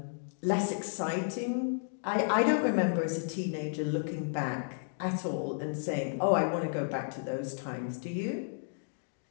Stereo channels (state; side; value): silent; right; digital silence